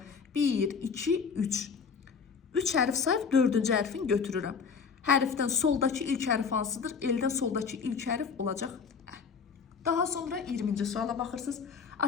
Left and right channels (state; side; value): quieter; right; 5.8 dB